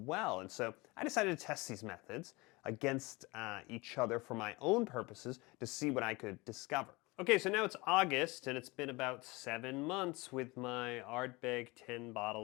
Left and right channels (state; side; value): quieter; right; 24.1 dB